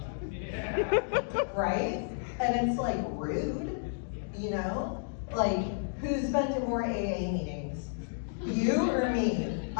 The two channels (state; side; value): silent; right; digital silence